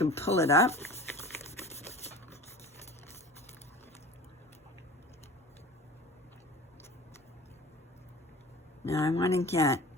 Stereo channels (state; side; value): normal; both; correlation 0.39